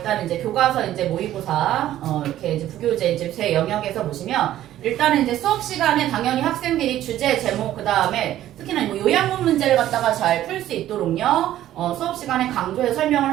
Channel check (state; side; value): quieter; left; 13.0 dB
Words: 이제 교과서 이제 모의고사 이렇게 이제 부교재 이제 제 영역에서 보시면 일단은 이제 수업 시간에 당연히 학생들이 주제 제목 그 다음에 특히나 뭐 요약문 문제를 갖다가 잘 풀 수 있도록요 수업 시간에 강조해서